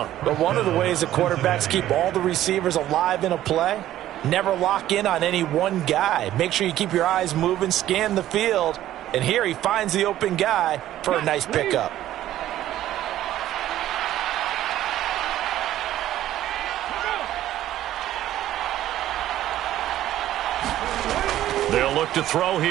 But one of the ways that quarterbacks keep all the receivers alive in a play, never lock in on any one guy. Make sure you keep your eyes moving, scan the field. And here he finds the open guy for a nice pickup. They'll look to throw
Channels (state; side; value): quieter; left; 13.2 dB